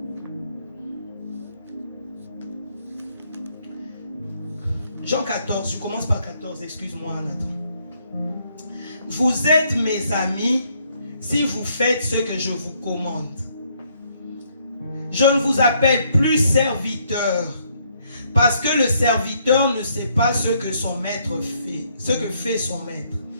Jean 14, je commence par 14, excuse-moi Nathan. Vous êtes mes amis si vous faites ce que je vous commande. Je ne vous appelle plus serviteur, parce que le serviteur ne sait pas ce que son maître fait, ce que fait son maître.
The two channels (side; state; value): both; inverted; correlation -0.70